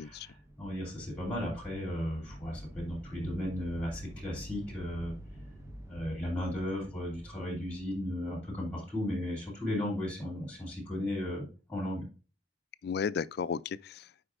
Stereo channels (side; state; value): both; normal; correlation 0.69